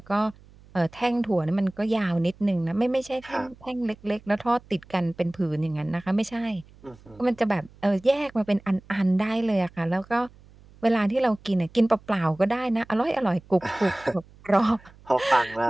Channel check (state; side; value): noise; right; hum, 25 dB below the sound